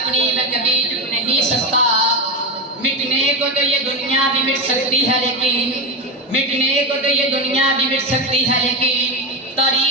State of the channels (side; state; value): both; normal; correlation 0.15